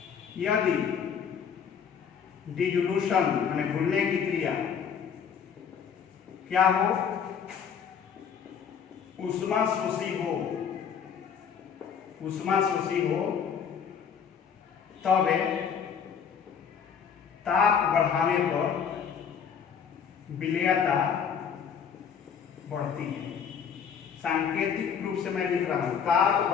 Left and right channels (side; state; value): right; quieter; 7.2 dB